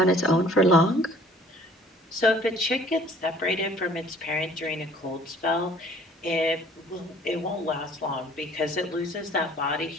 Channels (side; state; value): both; normal; correlation 0.54